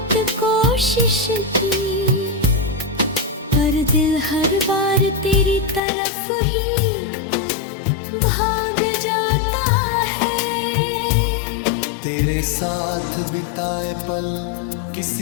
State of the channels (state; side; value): drops out; right; at 5.8 s